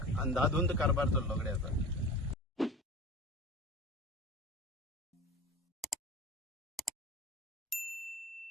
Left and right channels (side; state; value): both; normal; correlation 0.35